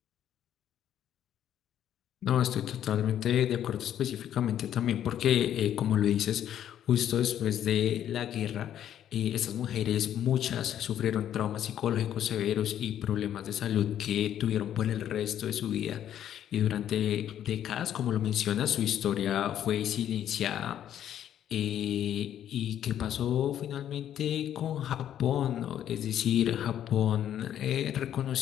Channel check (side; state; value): right; quieter; 10.6 dB